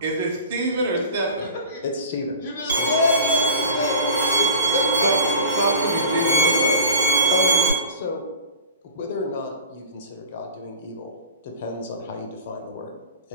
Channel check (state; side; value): inverted; both; correlation -0.39